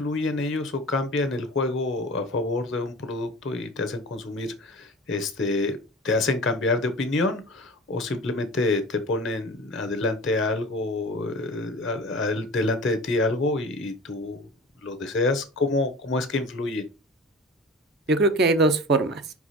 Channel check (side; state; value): both; normal; correlation 0.37